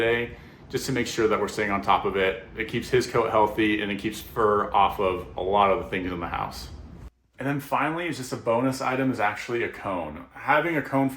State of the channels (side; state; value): both; identical; correlation 1.00